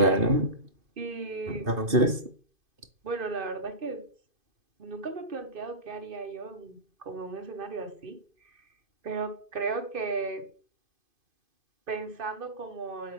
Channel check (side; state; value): left; late; 2.5 ms